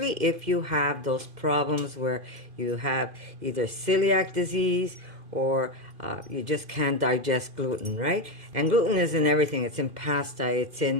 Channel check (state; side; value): late; left; 2.5 ms